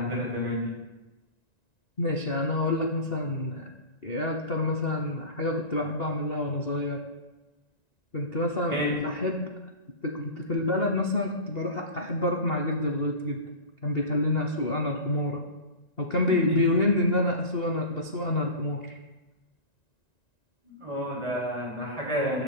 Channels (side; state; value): right; late; 1.9 ms